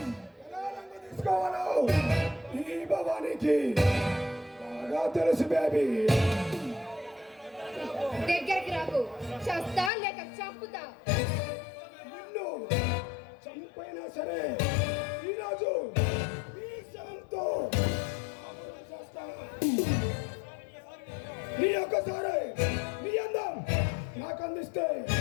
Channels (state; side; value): drops out; right; at 9.9 s